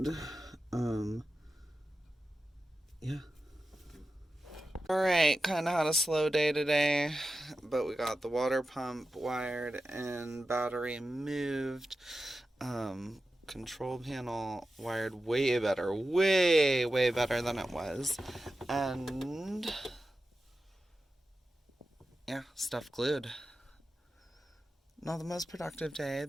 yeah. Alright, kind of had a slow day today, but we got the water pump wired and battery moved. Control panel wired way better, way better than it was. And yeah, stuff glued. Not the most productive day,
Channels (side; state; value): both; normal; correlation 0.92